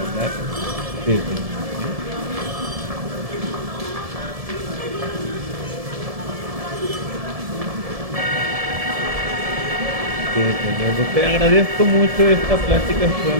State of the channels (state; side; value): late; left; 1.7 ms